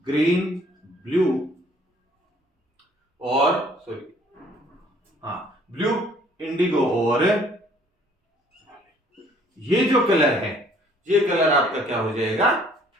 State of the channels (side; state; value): both; normal; correlation 0.59